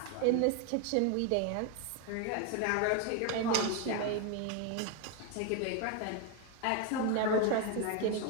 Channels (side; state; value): both; different; correlation 0.01